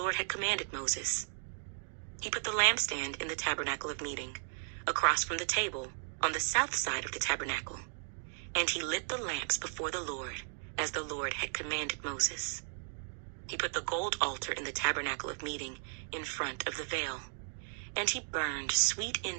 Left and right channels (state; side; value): silent; left; 54 dB below the other